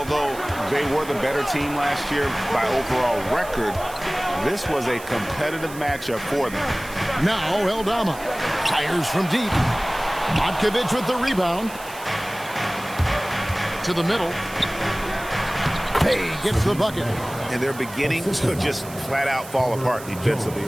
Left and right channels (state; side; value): noise; right; hiss, 16 dB below the sound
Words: they were the better team last year by overall record, this was a competitive matchup for them. Now Eldama fires from deep. Matkovic with the rebound. To the middle. Pay gets the bucket. And they're beginning to just flat out fall apart defensively